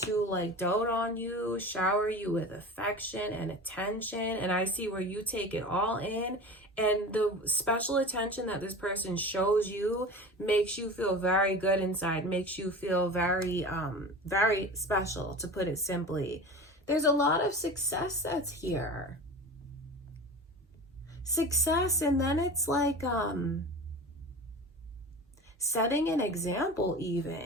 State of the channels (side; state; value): both; normal; correlation 0.34